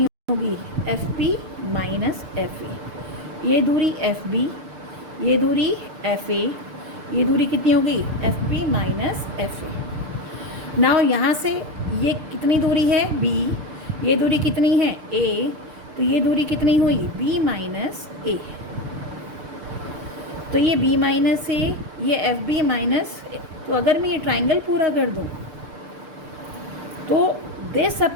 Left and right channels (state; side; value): late; left; 6.7 ms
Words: होगी, एफ पी माइनस एफ ए। ये दूरी एफ बी, ये दूरी एफ ए, ये दूरी कितनी होगी, एफ पी माइनस एफ ए। नाउ यहाँ से ये कितनी दूरी है बी, ये दूरी कितनी है ए, तो ये दूरी कितनी हुई बी माइनस ए। तो ये b माइनस ए, ये एफ बी माइनस। तो अगर मैं ये ट्राइंगल पूरा कर दूँ तो this